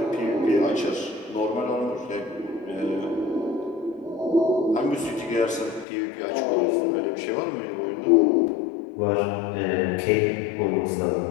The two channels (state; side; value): drops out; right; at 5.9 s